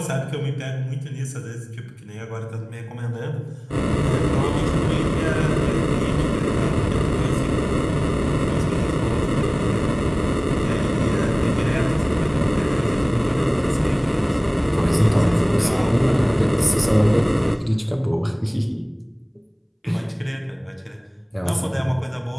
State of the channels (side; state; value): both; identical; correlation 1.00